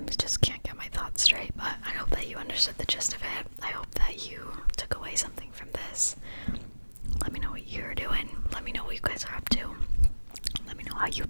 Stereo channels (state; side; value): inverted; both; correlation -1.00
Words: just can't get my thoughts straight, but I hope that you understood the gist of it. I hope that you took away something from this. Let me know what you're doing. Let me know what you guys are up to. Let me know how you've